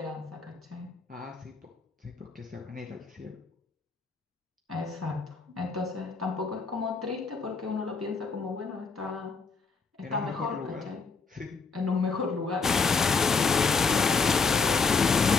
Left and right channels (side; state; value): right; quieter; 4.7 dB